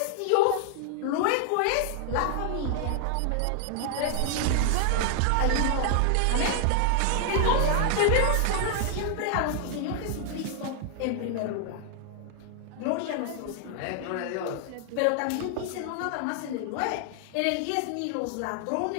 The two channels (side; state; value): both; different; correlation 0.00